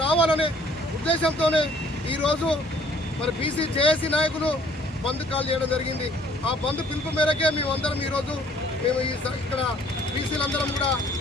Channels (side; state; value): both; normal; correlation 0.58